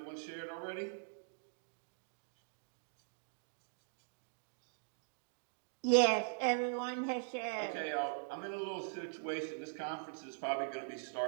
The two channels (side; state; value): left; silent; digital silence